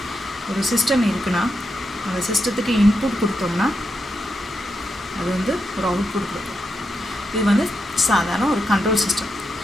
ஒரு சிஸ்டம் இருக்குன்னா அந்த சிஸ்டத்துக்கு இன்புட் கொடுத்தோம்னா அது வந்து ஒரு அவுட்புட் கொடுக்கும். இது வந்து சாதாரண ஒரு கண்ட்ரோல் சிஸ்டம்.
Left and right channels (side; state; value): both; normal; correlation 0.85